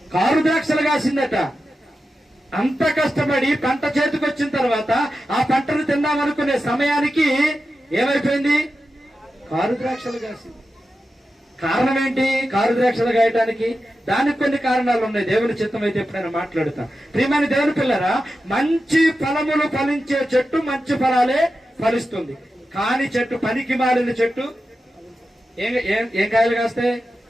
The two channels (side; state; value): both; normal; correlation 0.91